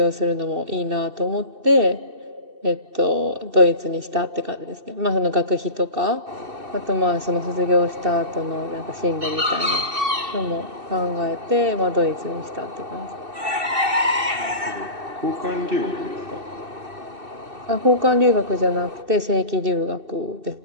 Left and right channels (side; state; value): left; late; 2.6 ms